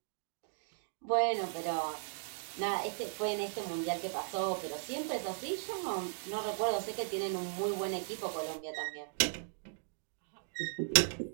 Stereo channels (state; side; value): silent; left; digital silence